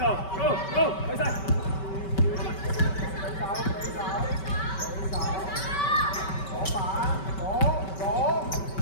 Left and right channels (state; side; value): late; right; 5.2 ms